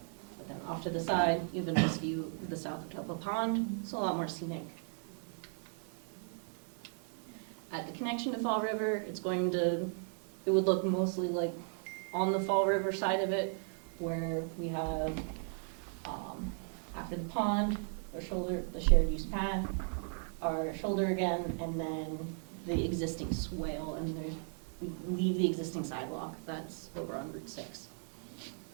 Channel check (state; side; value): silent; left; 54 dB below the other